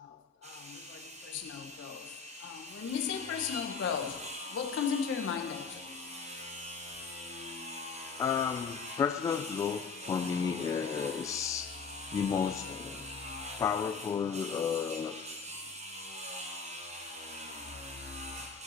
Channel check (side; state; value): right; quieter; 5.7 dB